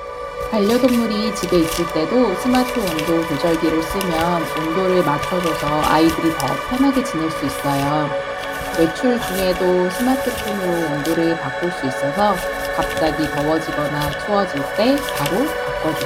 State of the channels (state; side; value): identical; both; correlation 1.00